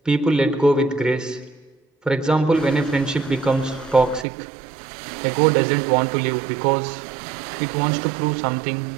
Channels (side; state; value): left; drops out; at 4.2 s